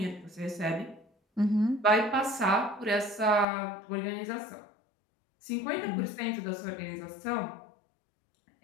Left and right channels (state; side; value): drops out; right; at 3.5 s